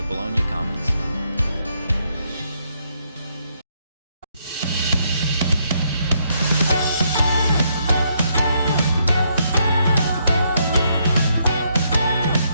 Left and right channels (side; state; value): both; inverted; correlation -0.75